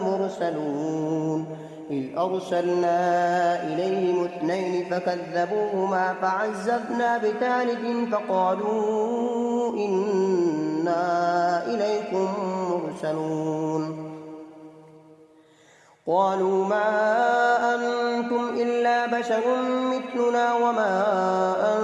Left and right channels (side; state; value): both; identical; correlation 1.00